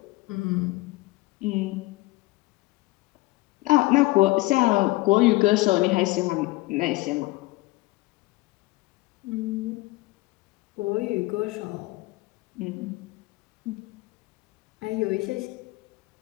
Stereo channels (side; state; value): right; quieter; 21.0 dB